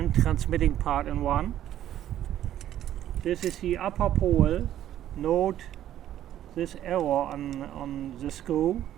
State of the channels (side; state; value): left; quieter; 12.0 dB